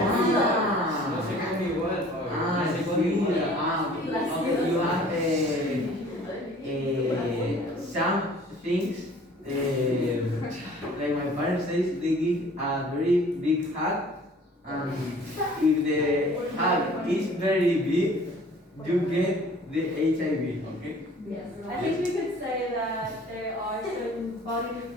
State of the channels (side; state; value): both; normal; correlation 0.51